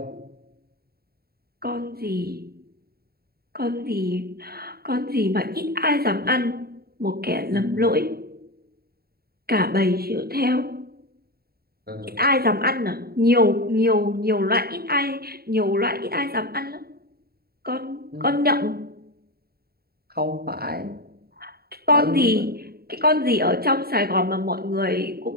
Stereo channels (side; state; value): left; late; 0.45 ms